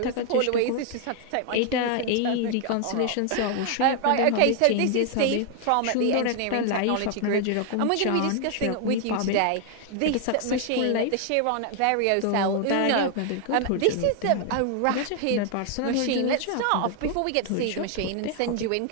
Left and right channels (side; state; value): both; different; correlation 0.00